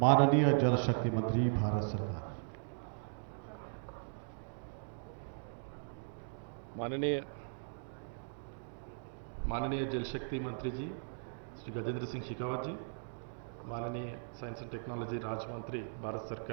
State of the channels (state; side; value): silent; left; digital silence